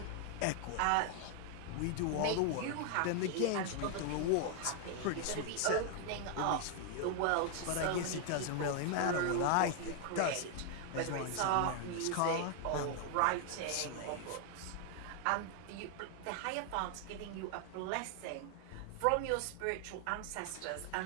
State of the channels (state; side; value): different; both; correlation 0.00